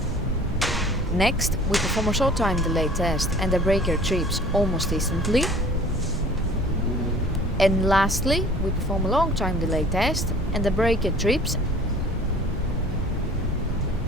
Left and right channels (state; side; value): normal; both; correlation 0.48